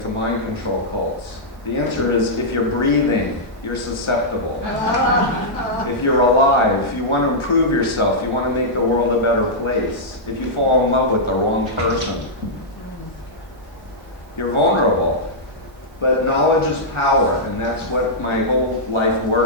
mind control cults. The answer is, if you're breathing, you're susceptible. If you're alive, if you want to improve yourself, you want to make the world a better place, if you fall in love with the wrong person, you're vulnerable. But knowledge is power, and that's what my whole life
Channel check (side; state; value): both; normal; correlation -0.10